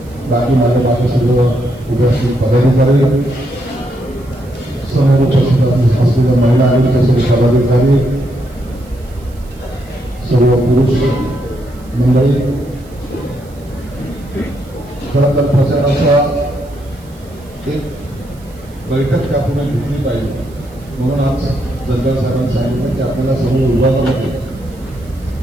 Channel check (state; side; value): noise; right; hiss, 27 dB below the sound